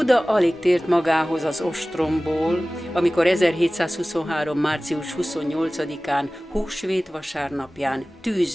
alig tért magához az ostromból, amikor 1723. március 28-án, húsvét vasárnapján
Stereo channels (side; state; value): both; normal; correlation 0.98